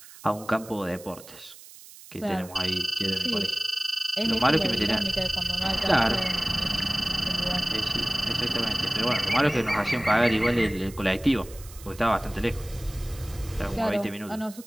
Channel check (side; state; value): right; noise; hiss, 19 dB below the sound